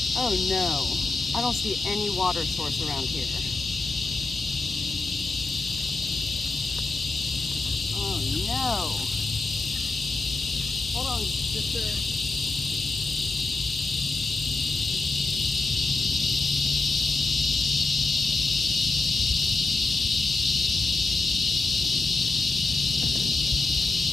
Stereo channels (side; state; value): right; quieter; 3.4 dB